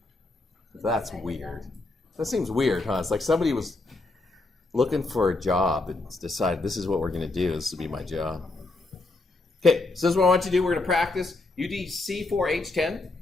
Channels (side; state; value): right; quieter; 3.1 dB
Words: That's weird. That seems weird, huh? It's like somebody was looking for a job and decided this is what we're going to do. This will be my job. Okay, so this is what I want you to do. We're going to practice. You need C4H10